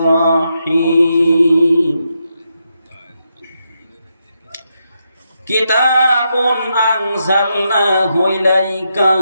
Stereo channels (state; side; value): inverted; both; correlation -0.83